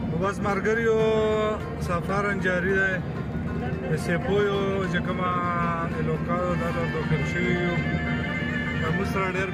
نو بس مرګریو سفر جاری دی د سیپویو چې کومه علاقه ده دا داخل شوي یو زموږ سره ډېر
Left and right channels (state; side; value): identical; both; correlation 1.00